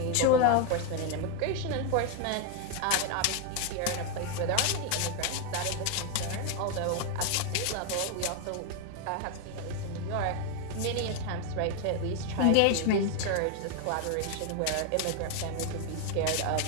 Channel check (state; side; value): different; both; correlation 0.01